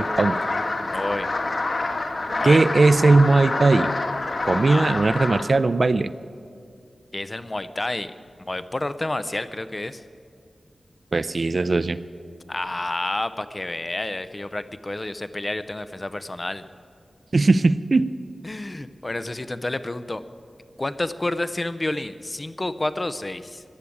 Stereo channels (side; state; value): both; normal; correlation 0.96